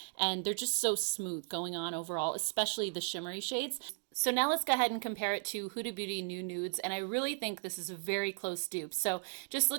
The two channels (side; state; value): left; silent; digital silence